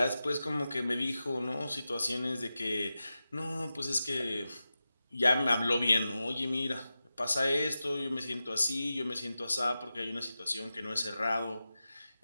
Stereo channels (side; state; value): both; inverted; correlation -0.93